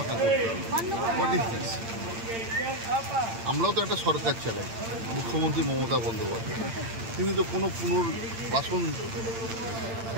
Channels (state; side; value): late; left; 8.8 ms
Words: করতে হবে। What is this? আমরাও তো একটা সরকার চালাই, মুখ্যমন্ত্রী মমতা বন্দ্যোপাধ্যায়, তিনি তো কোনো পুনর্বাসন,